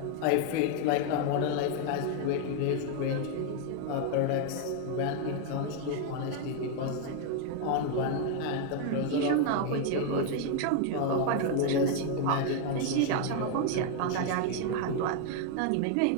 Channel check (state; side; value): different; both; correlation 0.00